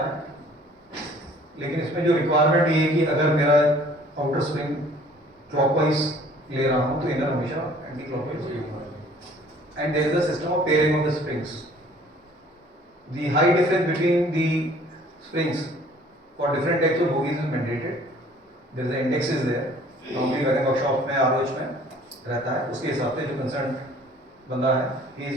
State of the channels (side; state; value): both; normal; correlation 0.54